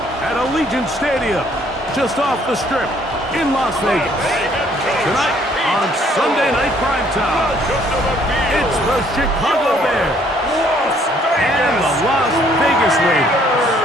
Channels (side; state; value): both; normal; correlation 0.63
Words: at Allegiant Stadium, just off the Strip in Las Vegas. Tonight on Sunday Night Primetime, it's the Chicago Bears and the Las Vegas Raiders.